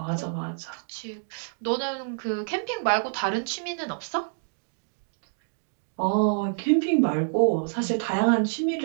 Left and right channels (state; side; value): silent; left; digital silence